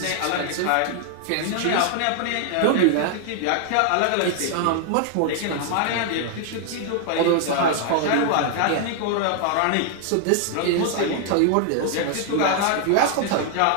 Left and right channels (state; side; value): different; both; correlation 0.00